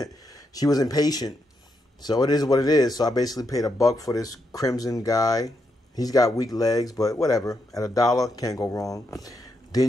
she was impatient. So it is what it is. So I basically paid $1 for this Crimson guy. He's got weak legs, but whatever. At $1, can't go wrong.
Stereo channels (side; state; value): both; normal; correlation 0.81